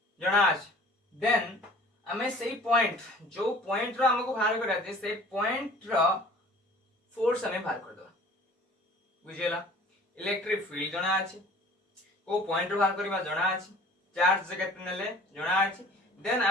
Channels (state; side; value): normal; both; correlation 0.48